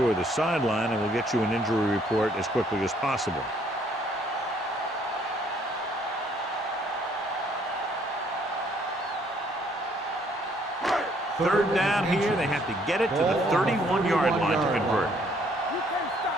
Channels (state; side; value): normal; both; correlation 0.65